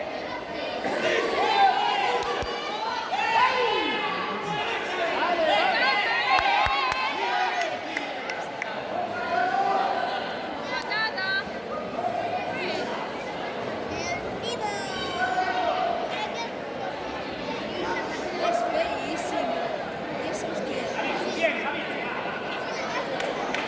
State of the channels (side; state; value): both; identical; correlation 1.00